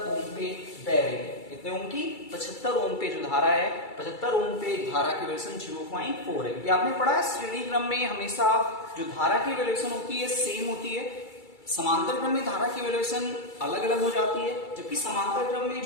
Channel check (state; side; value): late; right; 2.3 ms